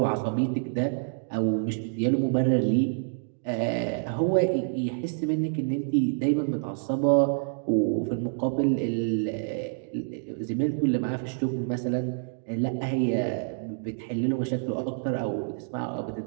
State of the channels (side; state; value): left; silent; digital silence